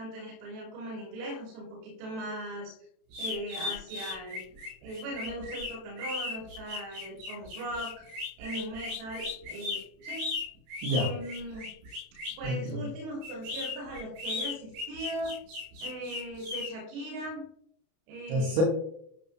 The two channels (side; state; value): left; late; 32 ms